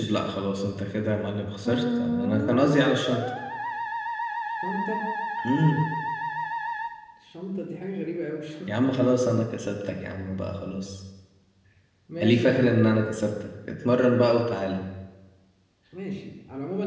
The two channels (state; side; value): identical; both; correlation 1.00